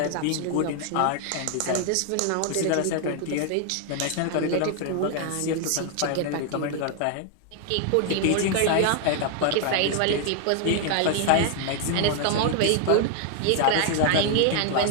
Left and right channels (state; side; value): different; both; correlation 0.00